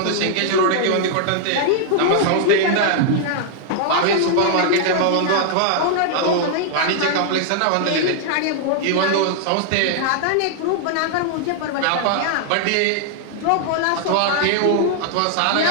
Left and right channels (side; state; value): both; different; correlation -0.01